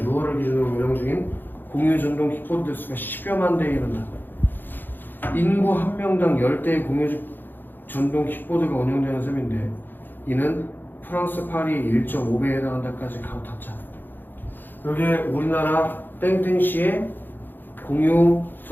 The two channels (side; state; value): right; late; 0.092 ms